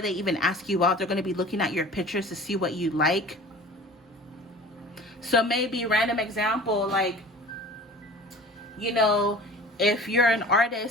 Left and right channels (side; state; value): both; normal; correlation 0.42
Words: even ask you out, they're going to be looking at your pictures to see what you like. So maybe random example, like, you know, if you're an